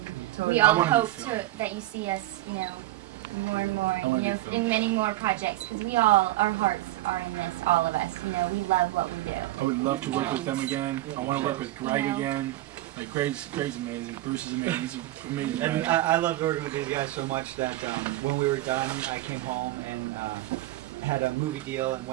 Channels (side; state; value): left; quieter; 16.5 dB